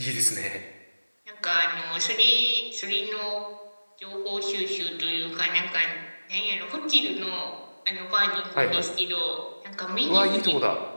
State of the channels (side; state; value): both; inverted; correlation -1.00